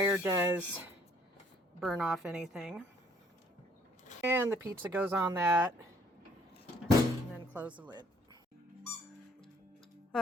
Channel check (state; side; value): normal; both; correlation 0.62